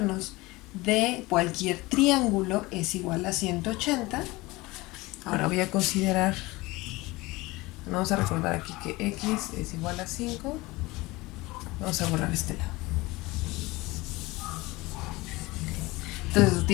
de cualquier triángulo es igual a 180, ahora voy a considerar, vamos a recordar aquí que x es igual a 5, vamos a borrar este lado. Entonces,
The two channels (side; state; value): right; quieter; 21.5 dB